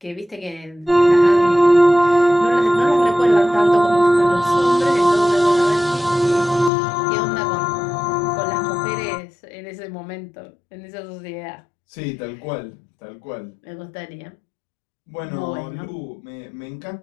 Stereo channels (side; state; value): right; drops out; at 6.7 s